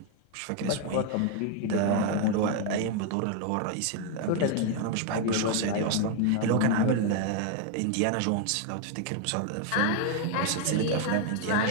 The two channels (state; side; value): different; both; correlation 0.01